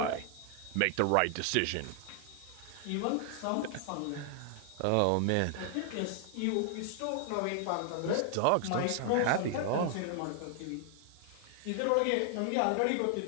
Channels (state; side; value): different; both; correlation 0.00